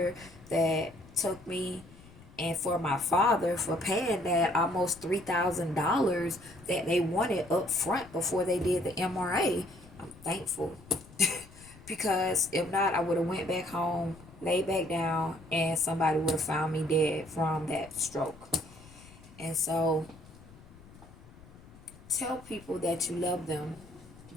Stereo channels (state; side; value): noise; left; rumble, 21 dB below the sound